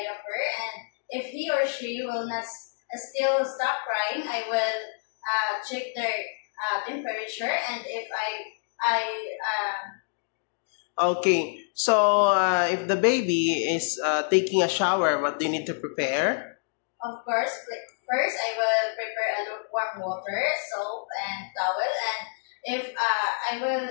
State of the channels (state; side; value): silent; right; digital silence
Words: and if he or she will not still stop crying, I will check their temperature, and if Okay. So if the baby is taking a shower, what do you need to prepare? of course, first I will prepare a lukewarm water, soap, and towel, and if I will